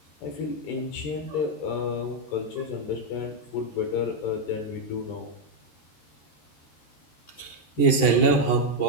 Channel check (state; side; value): late; right; 13 ms